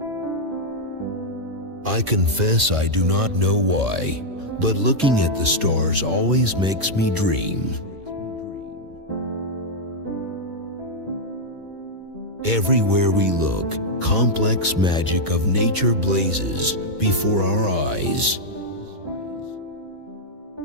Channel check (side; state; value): left; late; 2.2 ms